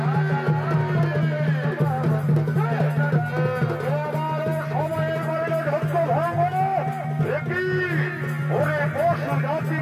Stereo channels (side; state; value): both; identical; correlation 1.00